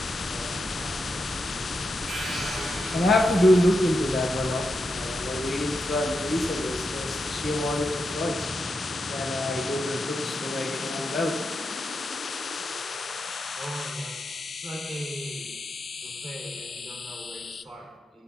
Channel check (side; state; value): both; normal; correlation 0.86